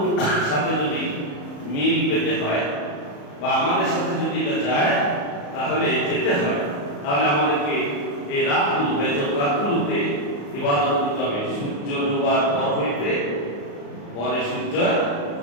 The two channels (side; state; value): right; late; 35 ms